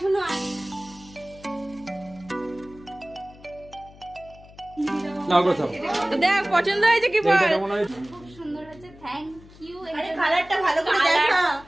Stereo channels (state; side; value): noise; left; hum, 22 dB below the sound